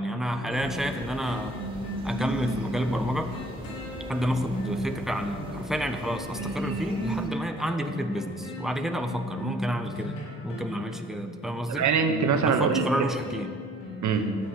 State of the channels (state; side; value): normal; both; correlation 0.57